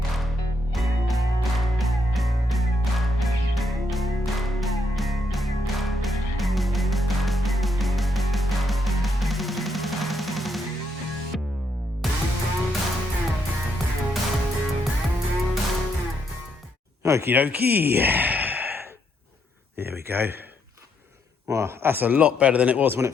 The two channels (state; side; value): normal; both; correlation 0.76